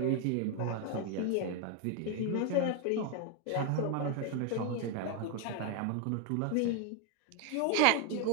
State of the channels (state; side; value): different; both; correlation 0.01